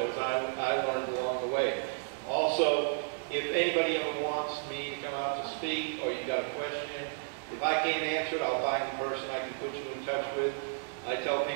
I learned along the way. Also, if anybody ever wants me to come out to speak, or you got a question, if I can't answer it, I'll find the person I can put you in touch with. I tell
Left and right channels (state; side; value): silent; left; digital silence